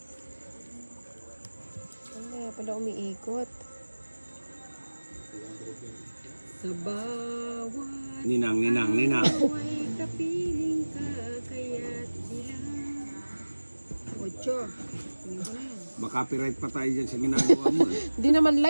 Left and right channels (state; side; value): inverted; both; correlation -1.00